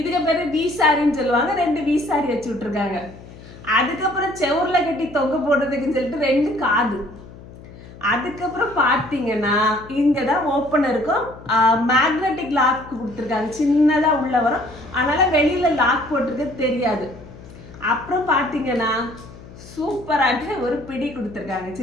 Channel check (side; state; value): left; noise; hum, 18 dB below the sound